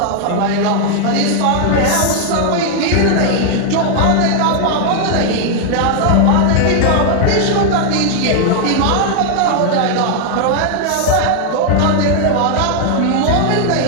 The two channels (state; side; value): different; both; correlation 0.00